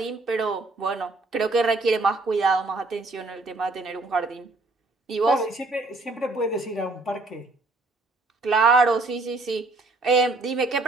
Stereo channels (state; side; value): quieter; left; 3.2 dB